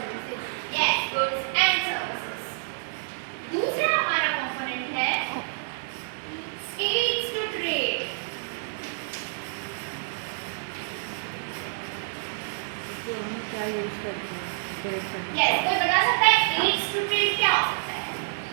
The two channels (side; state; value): left; silent; digital silence